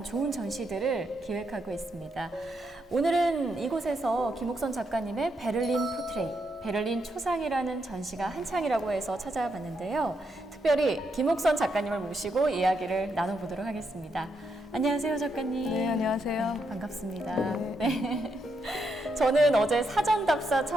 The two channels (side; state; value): both; normal; correlation 0.80